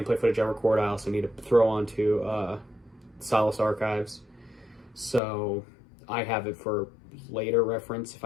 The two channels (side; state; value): right; drops out; at 5.2 s